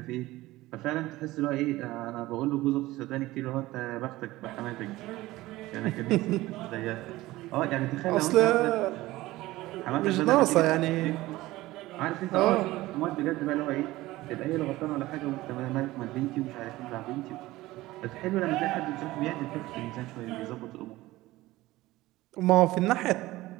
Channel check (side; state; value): left; quieter; 17.9 dB